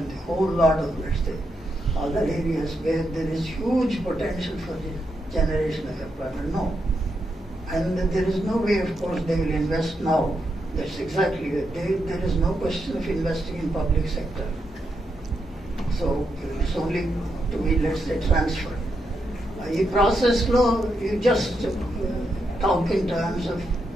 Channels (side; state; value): both; normal; correlation 0.83